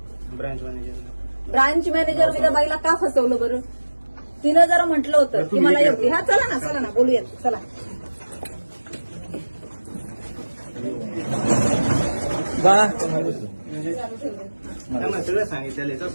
Branch manager. ब्रांच मॅनेजर मी त्या बाईला का फसवलं बरं? तिनं जर म्हटलं होतं की मला एवढी, हा चला ना बोलूयात, चला. त्यांना सगळं सांगितलेलं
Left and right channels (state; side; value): inverted; both; correlation -1.00